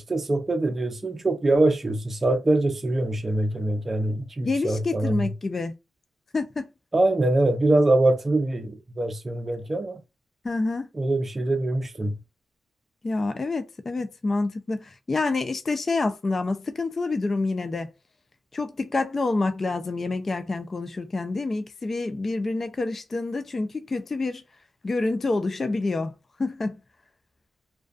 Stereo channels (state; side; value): normal; both; correlation 0.91